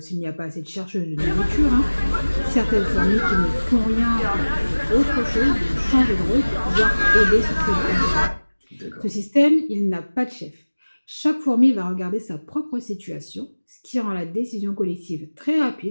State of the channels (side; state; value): both; inverted; correlation -1.00